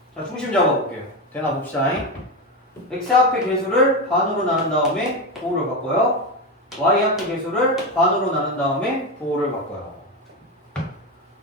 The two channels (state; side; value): normal; both; correlation 0.15